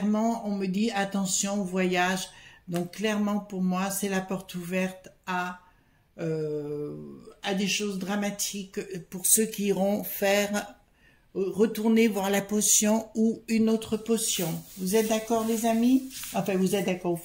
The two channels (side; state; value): both; identical; correlation 1.00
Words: on me dit, attention au voyage. Donc, clairement, pour moi, c'est la porte ouverte à des choses dramatiques pour ceux qui iront retourner voir la potion ou une autre potion. Vous êtes d'accord, les amis? Enfin, vous êtes d'accord,